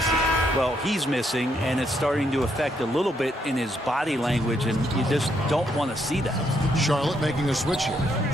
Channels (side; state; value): both; normal; correlation 0.75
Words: Well, he's missing, and it's starting to affect a little bit in his body language, and you just don't want to see that. Charlotte making a switch here.